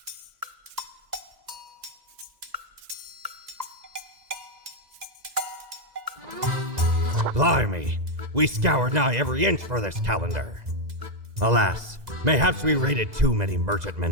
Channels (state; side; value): late; left; 2.0 ms